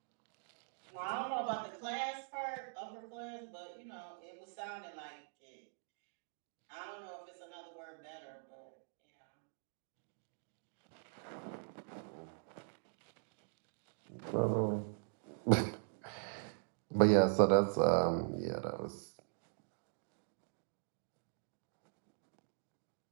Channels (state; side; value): silent; left; digital silence